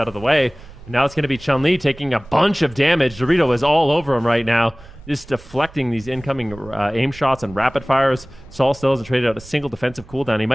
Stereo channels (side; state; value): right; noise; rumble, 20 dB below the sound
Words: of the way. And now it's going to be Chun-Li taking a bunch of damage. Dorito is all over him right now, just deflecting these incoming aim shots and rapid fires. Saul still hasn't traded out a single defensive cooldown. He